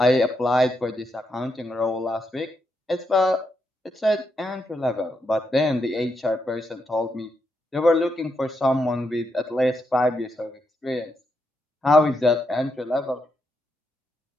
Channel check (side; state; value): both; normal; correlation 0.81